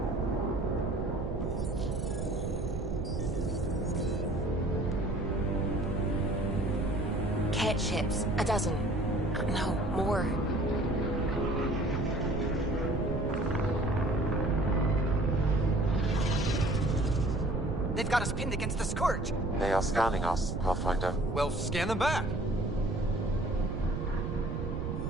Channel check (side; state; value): right; noise; rumble, 3 dB below the sound